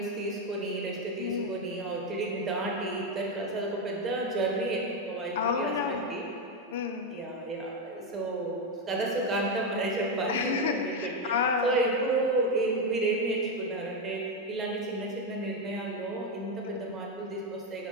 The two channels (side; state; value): both; normal; correlation 0.07